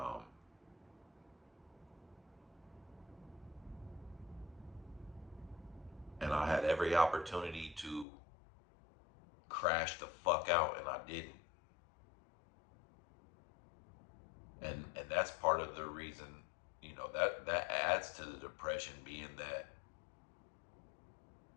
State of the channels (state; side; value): drops out; right; at 8.1 s